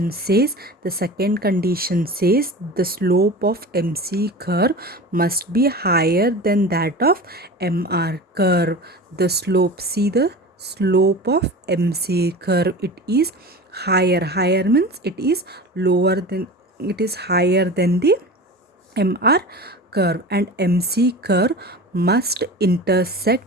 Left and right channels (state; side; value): normal; both; correlation 0.33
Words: says. The second condition says the slope of MC curve must be higher than that of MR curve. The slope, see the slope of MC curve, it is higher means it is higher than the MR curve, and MC curve must intersect